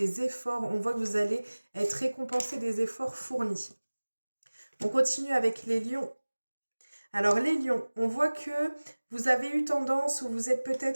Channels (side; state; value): both; inverted; correlation -1.00